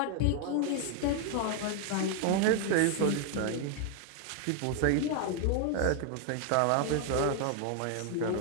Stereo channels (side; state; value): both; different; correlation 0.00